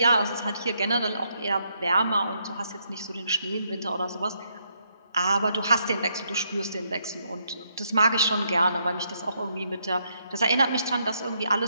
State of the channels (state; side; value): inverted; both; correlation -0.76